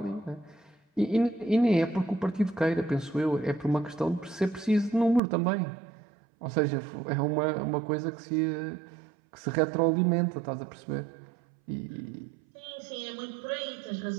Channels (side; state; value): left; drops out; at 5.2 s